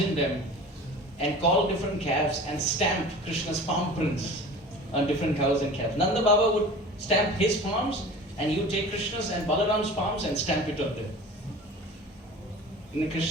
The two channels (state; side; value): normal; both; correlation 0.39